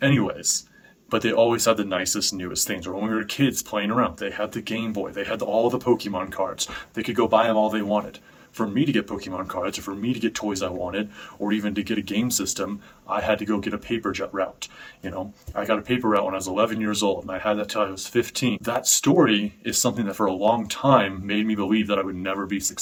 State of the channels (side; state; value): both; identical; correlation 1.00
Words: Anyways, but they always had the nicest, newest things. Or when we were kids playing around, they had the Game Boy. They had all the Pokemon cards. They could go buy them all they wanted. For me to get Pokemon cards, or for me to get toys I wanted, or even to get a game system, I had to go get a paper jet route. I got a paper route when I was 11 years old, and I had that till I was 15. That story is something that for a long time made me believe that I would never be